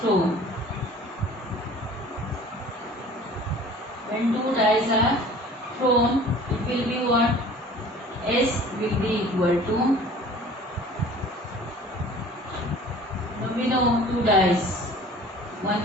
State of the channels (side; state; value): both; normal; correlation 0.47